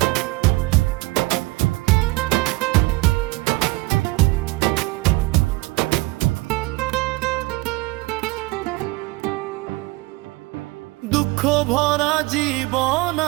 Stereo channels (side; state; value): left; quieter; 22.9 dB